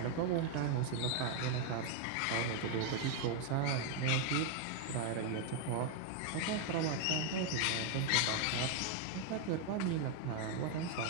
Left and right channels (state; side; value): different; both; correlation 0.01